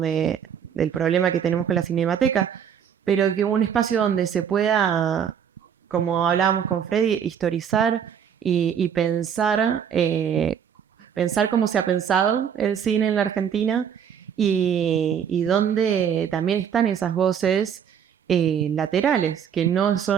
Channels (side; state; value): left; quieter; 8.2 dB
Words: del problema que tenemos con la Cinemateca, pero que un espacio donde se pueda, como hablábamos con Freddy, historizar y pensar cómo se ha pensado el cine en la Argentina, y donde también están esas voces laterales, que no